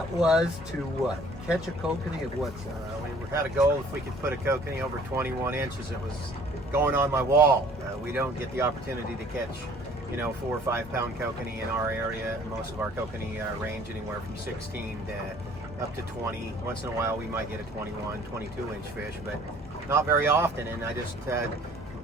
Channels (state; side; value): normal; both; correlation 0.54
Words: was to what? Catch a kokanee of what size? We had a goal if we could put a kokanee over 21 inches. It was going on my wall. We don't get the opportunity to catch, 4 or 5 pound kokanee in our area. Most of our kokanee range anywhere from 16 to up to 20. Once in a while we might get a 21, 22 inch fish, but not very often. And I just